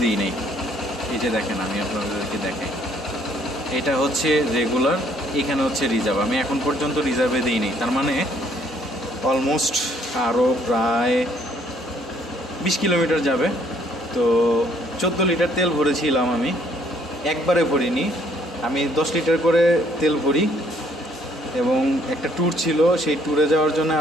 দিই নাই। এই যে দেখেন, আমি আপনাদেরকে দেখাই, এটা হচ্ছে রেগুলার, এখানে হচ্ছে রিজার্ভ। আমি এখন পর্যন্ত রিজার্ভে দিই নাই, তার মানে অলমোস্ট আরও প্রায় 20 কিলোমিটার যাবে। তো 14 লিটার তেল ভরেছিলাম, আমি একবারে ভরিনি, আমি 10 লিটার করে তেল ভরি। এবং একটা ট্যুর ছিল, সেই ট্যুরে যাওয়ার জন্য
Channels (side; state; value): both; normal; correlation 0.64